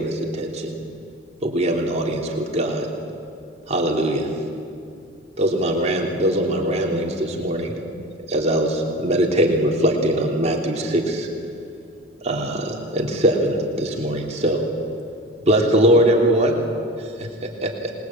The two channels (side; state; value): both; normal; correlation 0.33